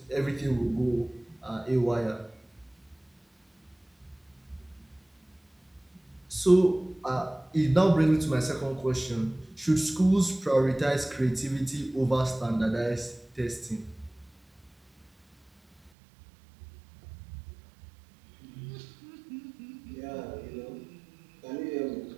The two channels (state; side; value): drops out; left; at 15.9 s